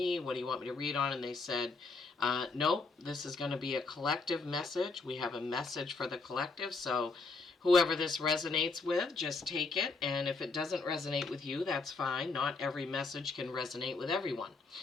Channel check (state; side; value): quieter; right; 3.9 dB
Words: What do you want me to read on? And they said, nope, this is going to be a collective message. We have a message for the collective, so whoever this resonates with, just take it, and if it doesn't resonate with you, that's fine. Not every message can resonate with everyone.